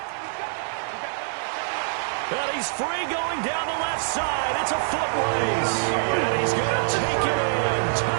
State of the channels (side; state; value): left; silent; digital silence